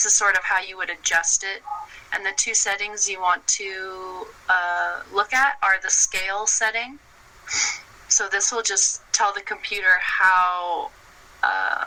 is sort of how you would adjust it. And the two settings you want to look at are the scale setting. So this will just tell the computer how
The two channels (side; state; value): both; identical; correlation 1.00